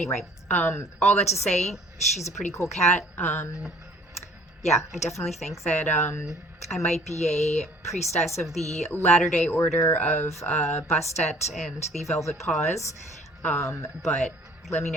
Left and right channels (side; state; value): both; normal; correlation 0.54